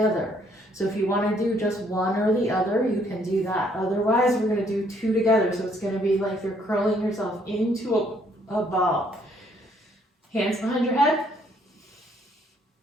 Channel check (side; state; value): both; normal; correlation 0.66